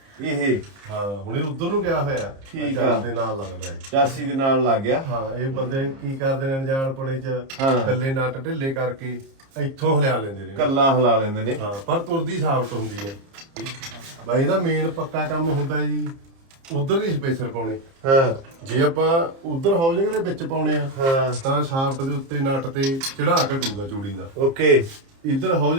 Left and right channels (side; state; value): left; late; 30 ms